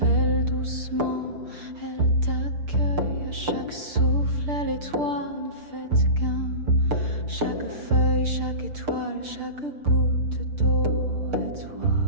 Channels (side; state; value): left; late; 6.7 ms